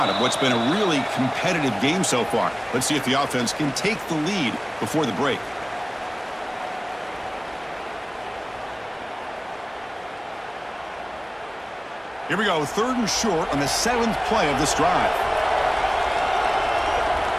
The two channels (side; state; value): both; identical; correlation 1.00